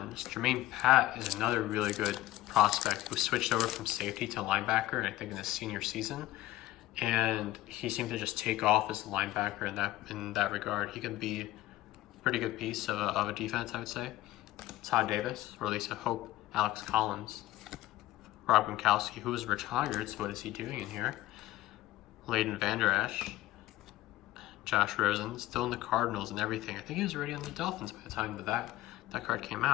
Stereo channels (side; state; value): right; quieter; 16.2 dB